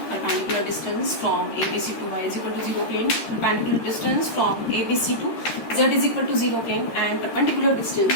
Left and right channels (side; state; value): right; late; 13 ms